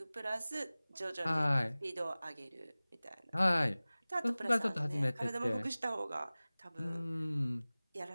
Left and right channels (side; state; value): both; inverted; correlation -0.99